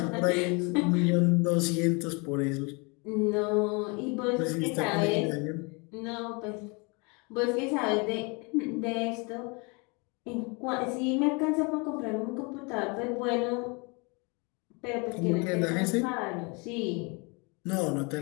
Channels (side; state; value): right; quieter; 30.5 dB